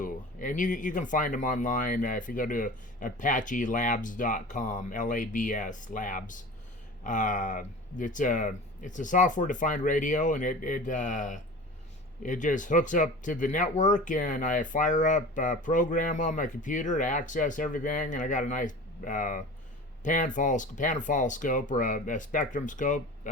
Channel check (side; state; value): both; normal; correlation 0.37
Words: And you can find them online if you go to apachelabs.com, Labs, labs. It's a software-defined radio, and it just hooks up to the network, and I fire up a program on my computer to access everything, and I got a nice panfall scope or a spectrum scope